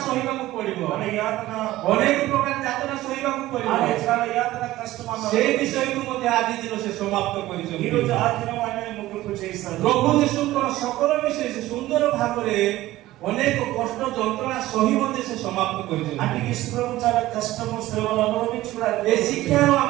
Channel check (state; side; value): quieter; left; 16.3 dB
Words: ସହିବାକୁ ପଡିବ, మన యాతన ଅନେକ ପ୍ରକାର ଯାତନା ସହିବାକୁ ପଡିବ। ఆయన చాలా యాతన కష్టం ସେ అన్నారు। ବିଷୟକୁ ମଧ୍ୟ ଆଜି ଦିନ ସେ ସମାପ୍ତ ఈ କରିଛନ୍ତି। రోజు ఆ దినం ఆయన ముగింపు చేశారు। ପ୍ରଭୁ ଯୀଶୁଙ୍କର ସକଳ ବିଷୟ ସେ ସୁନ୍ଦର ଭାବରେ ଅନେକ କଷ୍ଟ ଯନ୍ତ୍ରଣା ସହି ମଧ୍ୟ ସେ ସମାପ୍ତ କରିଛନ୍ତି। అంటే యేసు ప్రభు చాలా కష్టము శ్రమలు అనుభవించి కూడా ଏ ଶିକ୍ଷାରୁ